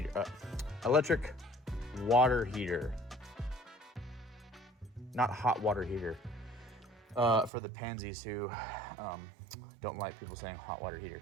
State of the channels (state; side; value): drops out; left; at 7.5 s